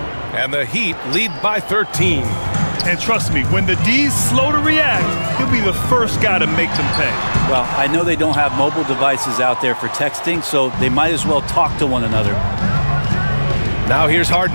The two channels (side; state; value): both; inverted; correlation -1.00